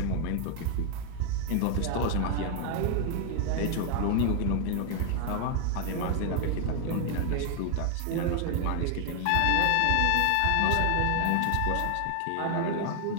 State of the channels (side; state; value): both; different; correlation 0.00